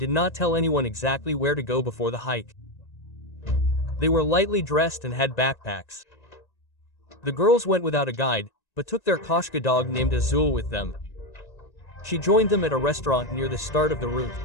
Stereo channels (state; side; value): late; right; 1.9 ms